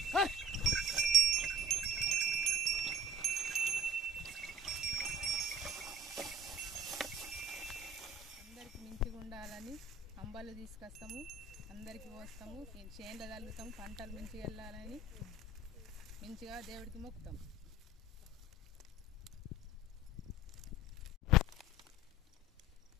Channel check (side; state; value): both; normal; correlation 0.49